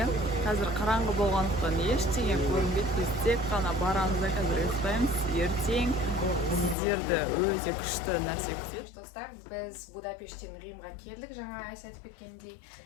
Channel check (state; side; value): drops out; right; at 6.8 s